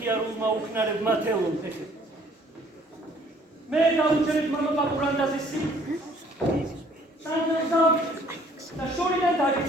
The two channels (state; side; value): normal; both; correlation 0.59